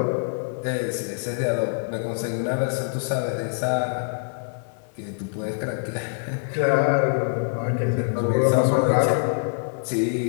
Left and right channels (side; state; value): right; silent; 58 dB below the other